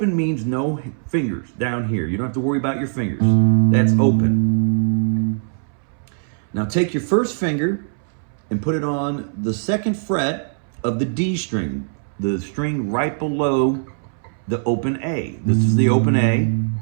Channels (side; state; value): left; silent; 65 dB below the other